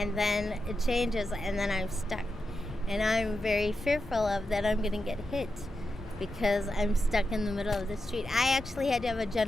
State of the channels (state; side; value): normal; both; correlation 0.89